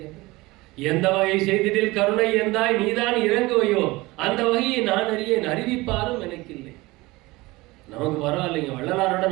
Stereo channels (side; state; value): left; quieter; 21.3 dB